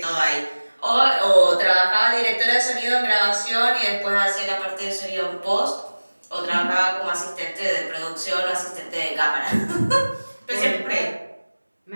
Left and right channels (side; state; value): both; inverted; correlation -1.00